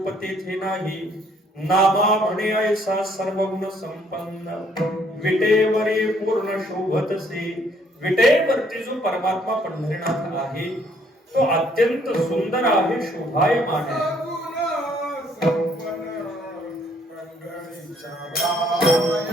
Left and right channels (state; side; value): normal; both; correlation 0.65